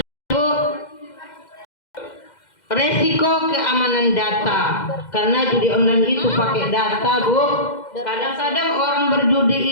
Bu, resiko keamanan data. Karena judi online itu pakai data, Bu. Kadang-kadang orang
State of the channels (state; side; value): late; right; 2.1 ms